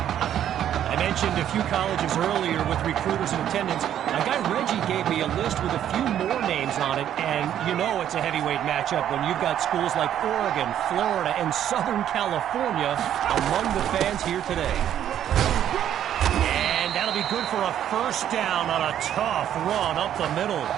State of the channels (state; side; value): quieter; left; 10.5 dB